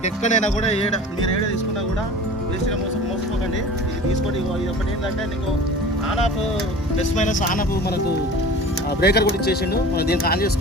ఎక్కడైనా కూడా మీరు ఏడ తీసుకున్నా కూడా వేస్ట్గా మోసపోకండి. ఇది తీసుకోండి. ఇది ఒకటి ఏంటంటే నీకు on off plus minus on off మనకు బ్రేకర్ కూడా ఇచ్చేసిండు. మనం దీనికి ఆన్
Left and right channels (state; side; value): normal; both; correlation 0.40